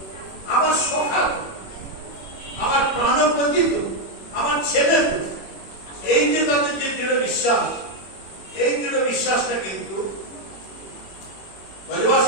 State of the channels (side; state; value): right; late; 21 ms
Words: আমার সখা, আমার প্রাণপতি, আমার ছেলে, এই যে তাদের যে দৃঢ় বিশ্বাস, এই দৃঢ় বিশ্বাসটা কিন্তু